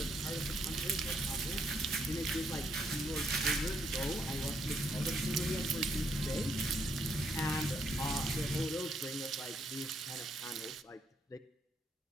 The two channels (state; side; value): normal; both; correlation 0.73